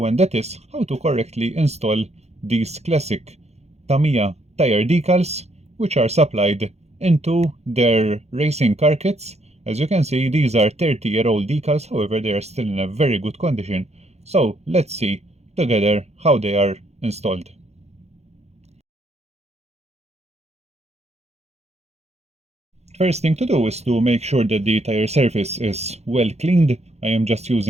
and that is how to correctly install these classic Tamiya tire decals, which are supplied into their racing car kits. As you can see, these are 30-year-old decals, however they are still in a very good condition. So let's see together how they are installed. First thing to do is to make sure that the tire surface is well cleaned. I am just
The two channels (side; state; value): left; late; 0.31 ms